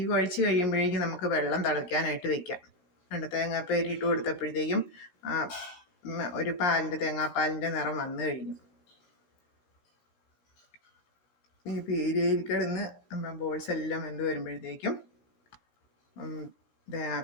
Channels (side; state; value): right; late; 17 ms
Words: കുഴച്ച് കഴിയുമ്പോഴേക്കും നമുക്ക് വെള്ളം തിളയ്ക്കാനായിട്ട് വെക്കാം. 2 തേങ്ങാപ്പേരി ഇട്ട് കൊടുത്തപ്പോഴത്തേക്കും ഒരു തേങ്ങാപ്പാലിൻ്റെ നിറം വന്നു കഴിഞ്ഞു. ഈ പീരിയയിൽ കിടന്ന് നമ്മുടെ ബോൾസ് എല്ലാം വെന്ത് വരുമ്പോഴത്തേക്കും